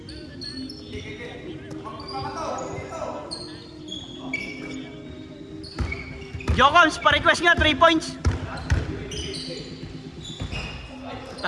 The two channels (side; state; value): both; identical; correlation 1.00